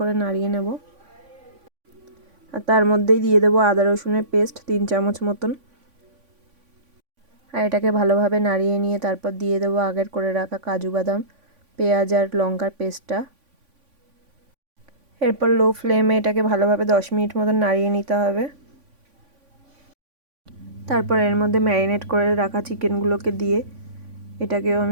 নাড়িয়ে নেব। আর তার মধ্যেই দিয়ে দেবো আদা রসুনের পেস্ট 3 চামচ মতন। আর এটাকে ভালোভাবে নাড়িয়ে নিয়ে তারপর দিয়ে দেবো আগের করে রাখা কাজু বাদাম, পেঁয়াজ আর লঙ্কার পেস্টটা। এরপর লো ফ্লেমে এটাকে ভালোভাবে 10 মিনিট মতন নাড়িয়ে নিতে হবে। তারপর এর মধ্যে ম্যারিনেট করে রাখা চিকেনগুলোকে দিয়ে এটাকেও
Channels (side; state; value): left; late; 3.5 ms